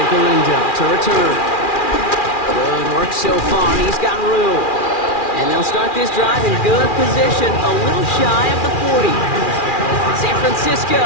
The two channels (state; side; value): late; right; 2.4 ms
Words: Galindo to return. Good work so far. He's got room. And they'll start this drive in good position, a little shy of the 40. San Francisco